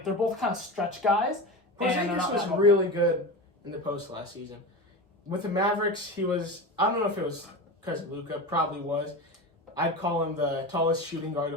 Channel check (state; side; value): normal; both; correlation 0.25